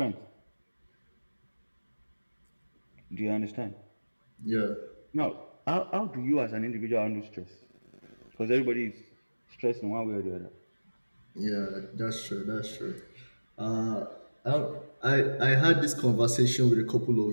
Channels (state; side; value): inverted; both; correlation -1.00